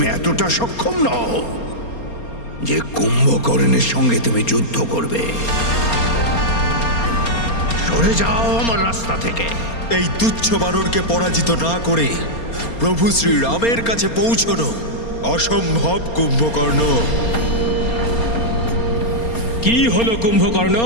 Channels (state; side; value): late; right; 4.3 ms